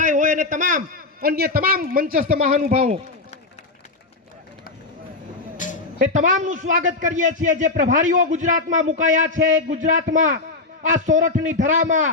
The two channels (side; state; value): right; quieter; 3.5 dB